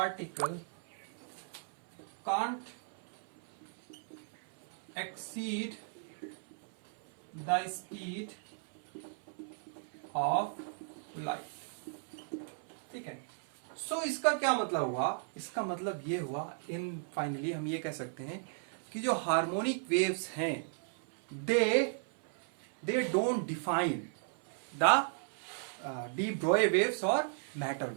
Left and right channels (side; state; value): left; silent; 54 dB below the other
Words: can't exceed the speed of light। ठीक है, सो इसका क्या मतलब हुआ? इसका मतलब ये हुआ, इन फाइनली हम ये कह सकते हैं कि जो हार्मोनिक वेव्स हैं they don't define the de Broglie waves और matter